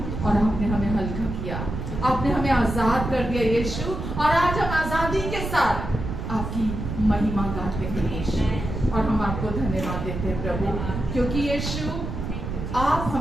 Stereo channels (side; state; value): right; noise; rumble, 5 dB below the sound